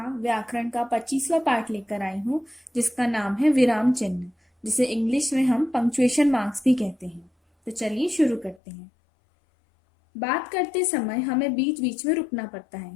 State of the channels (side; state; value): right; drops out; at 8.6 s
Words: व्याकरण का 25वां पाठ लेकर आई हूँ, जिसका नाम है विराम चिन्ह, जिसे इंग्लिश में हम पंक्चुएशन मार्क्स भी कहते हैं। तो चलिए शुरू करते हैं। बात करते समय हमें बीच बीच में रुकना पड़ता